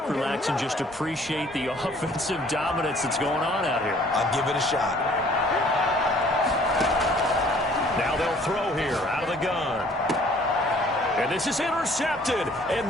relax, and just appreciate the offensive dominance that's going on out here. I'll give it a shot. Now they'll throw here out of the gun. And this is intercepted,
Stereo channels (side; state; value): both; normal; correlation 0.56